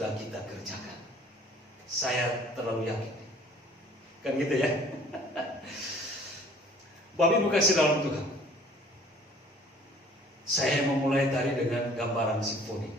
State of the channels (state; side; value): normal; both; correlation 0.52